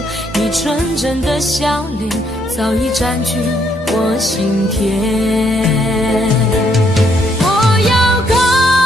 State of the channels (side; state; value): both; normal; correlation 0.72